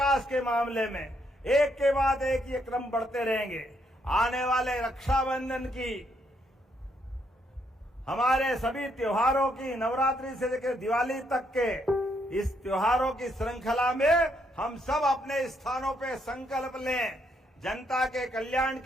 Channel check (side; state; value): both; normal; correlation 0.75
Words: के मामले में एक के बाद एक ये क्रम बढ़ते रहेंगे। आने वाले रक्षाबंधन की, हमारे सभी त्योहारों की, नवरात्रि से लेकर दिवाली तक के इस त्योहारों की श्रृंखला में हम सब अपने स्थानों पे संकल्प लें। जनता के कल्याण